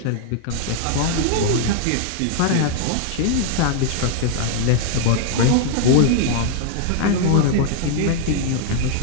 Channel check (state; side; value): different; both; correlation 0.00